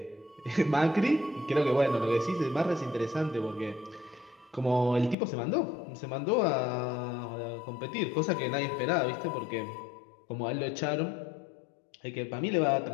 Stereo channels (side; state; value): right; drops out; at 5.2 s